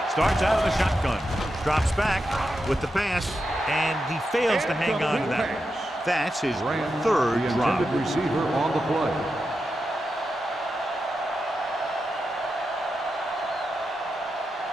starts out of the shotgun, drops back with the pass, and he fails to hang on to that. That's his third The drop. intended receiver on the play.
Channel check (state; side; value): normal; both; correlation 0.88